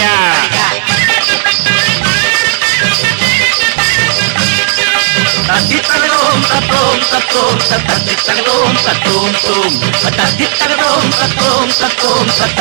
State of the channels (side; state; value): left; silent; digital silence